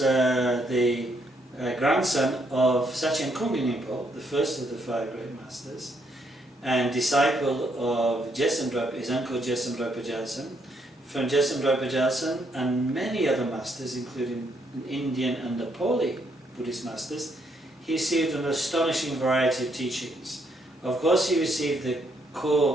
grandson of Sakya Pandita, the first of the five great masters, and disciple of his uncle Jesamdra Pajalsan. From Jesamdra Pajalsan and many other masters, including Indian and Nepali Buddhist masters, he received an astonishing variety of teachings. Of course, he received the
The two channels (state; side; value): normal; both; correlation 0.74